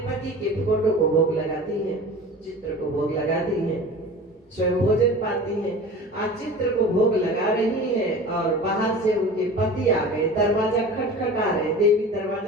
पति के फोटो को भोग लगाती है, चित्र को भोग लगाती है, स्वयं भोजन पाती है। आज चित्र को भोग लगा रही है और बाहर से उनके पति आ गए, दरवाजा खटखटा रहे, देवी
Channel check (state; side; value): normal; both; correlation 0.37